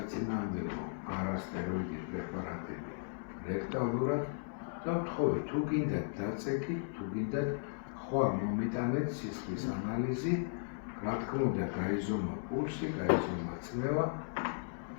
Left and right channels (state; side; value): silent; right; digital silence